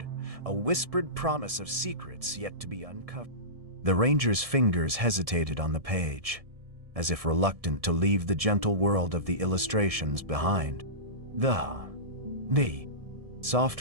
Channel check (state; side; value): late; left; 1.7 ms